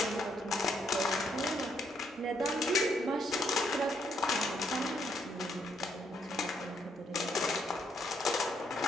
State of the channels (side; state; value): both; normal; correlation 0.73